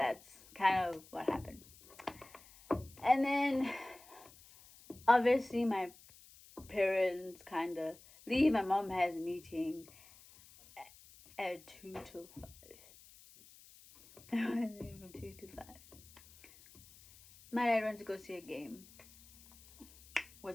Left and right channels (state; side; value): noise; left; hiss, 23 dB below the sound